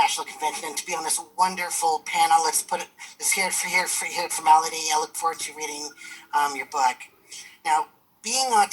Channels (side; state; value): both; identical; correlation 1.00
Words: convention and to be on this wonderful panel. Let's hear it for formality. I look forward to reading your book. Now, being